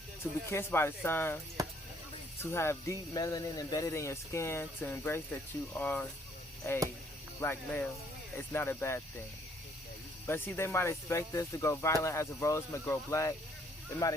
To be kissed by the sun, to have deep melanin embedded in your skin, to embrace that you are a black male, it's not a bad thing. But see, they might expect us to go violent as a rose may grow black. They might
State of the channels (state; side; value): normal; both; correlation 0.64